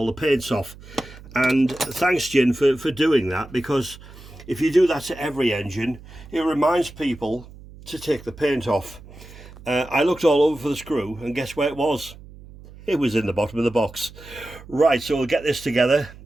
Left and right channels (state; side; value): noise; right; hum, 19 dB below the sound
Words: the paints off. And thanks, Jin, for doing that, because if you do that to every engine, it reminds people to take the paint off. I looked all over for the screw, and guess where it was? It was in the bottom of the box. Right, so we'll get this together